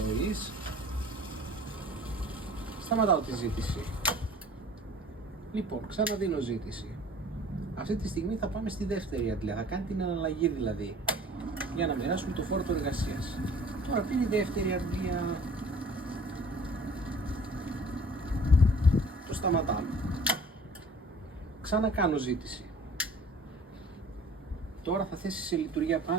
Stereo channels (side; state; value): both; normal; correlation 0.48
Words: Σταματάω τη ζήτηση. Λοιπόν, ξαναδίνω ζήτηση. Αυτή τη στιγμή θα πάμε στη δεύτερη αντλία, θα κάνει την αναλλαγή δηλαδή, για να μοιράσουμε το φόρτο εργασίας. Τώρα πήρε η δεύτερη αντλία. Το σταματάμε. Ξανακάνω ζήτηση. Τώρα θα θέσει σε λειτουργία